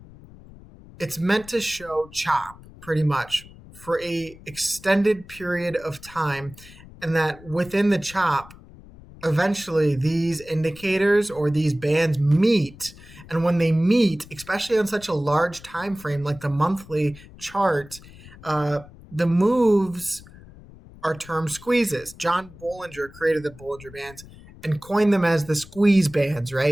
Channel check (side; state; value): left; noise; rumble, 20 dB below the sound